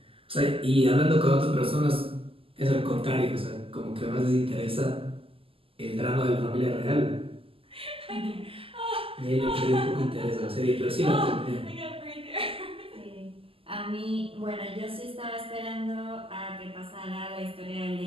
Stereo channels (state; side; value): late; left; 0.26 ms